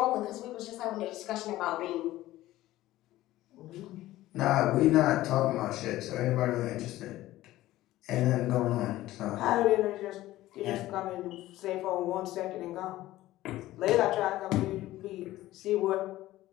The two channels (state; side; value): quieter; right; 15.9 dB